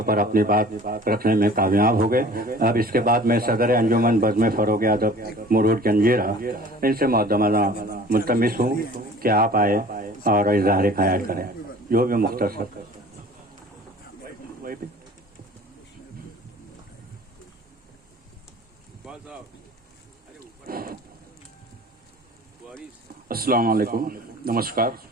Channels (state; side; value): normal; both; correlation 0.46